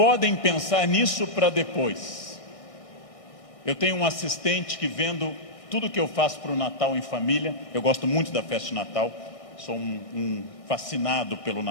pensar nisso para depois. Eu tenho um assistente que, vendo tudo que eu faço para o Natal em família, eu gosto muito da festa de Natal, sou um fascinado pelo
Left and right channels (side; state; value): right; late; 1.6 ms